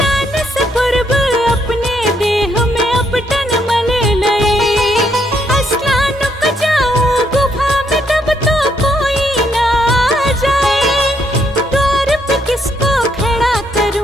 से पूर्व अपने देह में अपटन मल लई। स्नान को जाऊं गुफा में तब तो कोई ना जाए, द्वार पे किसको खड़ा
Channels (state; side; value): normal; both; correlation 0.73